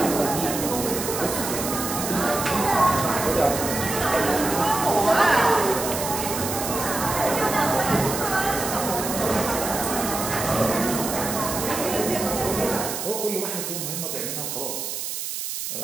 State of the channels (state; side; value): noise; right; hiss, 5 dB below the sound